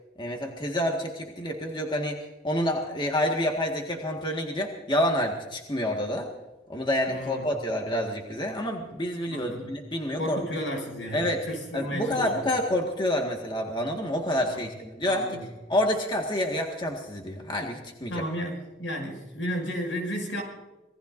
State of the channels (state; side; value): normal; both; correlation 0.43